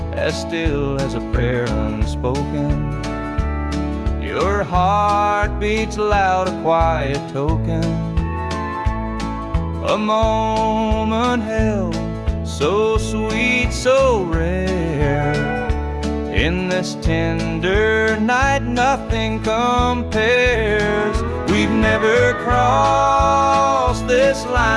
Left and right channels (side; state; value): both; identical; correlation 1.00